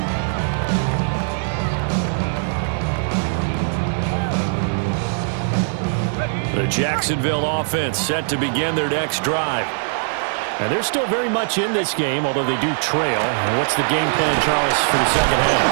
The Jacksonville offense set to begin their next drive. And they're still very much in this game, although they do trail. And what's the game plan, Charles, for the second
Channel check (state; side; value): silent; left; digital silence